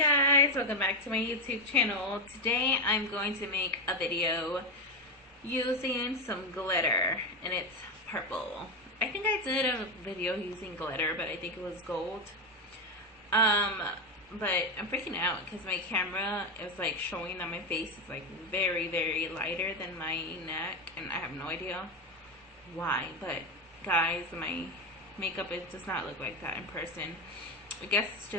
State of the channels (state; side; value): normal; both; correlation 0.12